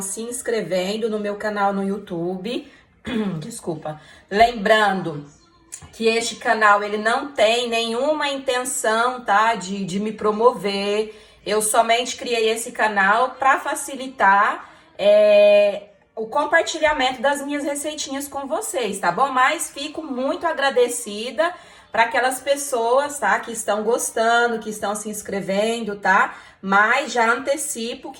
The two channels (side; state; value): both; identical; correlation 1.00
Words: se inscrevendo no meu canal no YouTube. Desculpa. Lembrando que este canal ele não tem nenhuma intenção, tá, de me promover. Eu somente criei esse canal para facilitar o compartilhamento das minhas receitinhas com vocês, tá bom? Mas fico muito agradecida para aquelas pessoas, tá, que estão gostando, que estão se inscrevendo, tá? Mas já antecipo